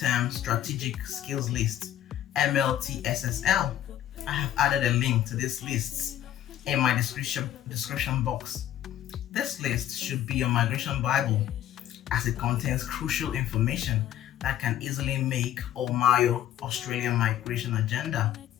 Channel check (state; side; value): quieter; right; 11.8 dB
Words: strategic skills list, MLTSSL. I have added a link to these lists in my description box. This list should be your migration Bible, as it contains crucial information that can easily make or mar your Australian migration agenda.